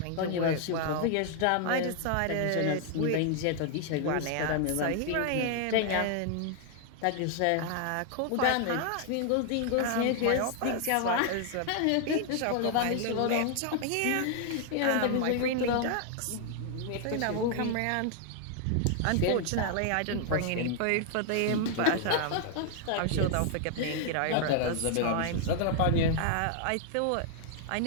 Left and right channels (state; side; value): different; both; correlation 0.00